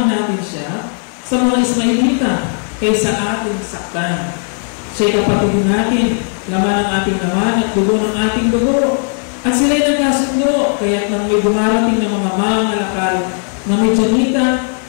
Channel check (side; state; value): right; silent; 57 dB below the other